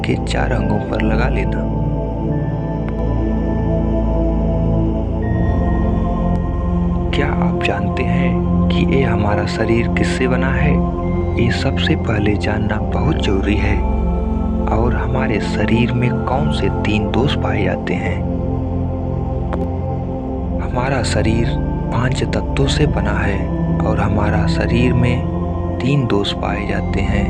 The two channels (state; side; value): identical; both; correlation 1.00